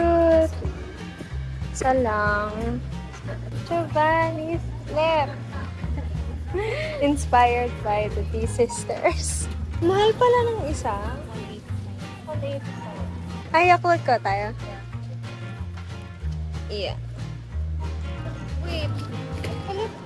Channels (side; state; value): both; identical; correlation 1.00